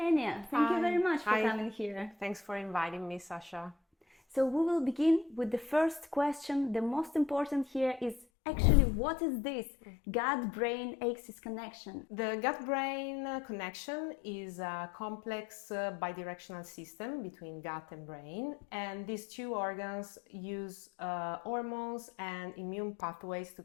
thank you very much for coming here. Thanks for inviting me, Sasha. So we will begin with the first question. The most important here is actually, what is this gut-brain axis connection? The gut-brain connection is a complex bidirectional system between gut and brain, and these two organs use hormones and immune pathways to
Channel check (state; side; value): drops out; right; at 8.2 s